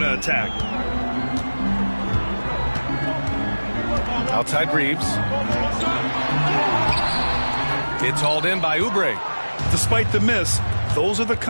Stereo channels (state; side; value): inverted; both; correlation -1.00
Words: attack. Outside Reeves. It's hauled in by Oubre. Despite the miss, those are the